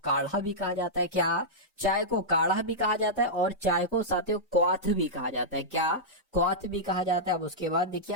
भी कहा जाता है, क्या चाय को काढ़ा भी कहा जाता है और चाय को साथियों क्वाथ भी कहा जाता है, क्या क्वाथ भी कहा जाता है। अब उसके बाद देखिए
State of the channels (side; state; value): both; normal; correlation -0.10